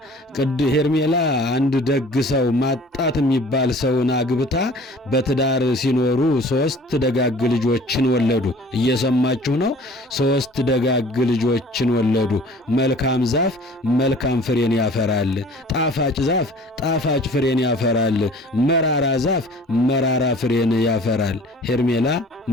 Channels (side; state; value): both; normal; correlation 0.48